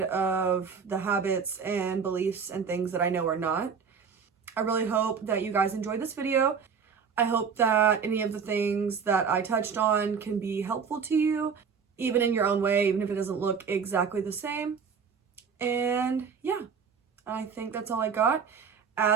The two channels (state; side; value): quieter; left; 6.2 dB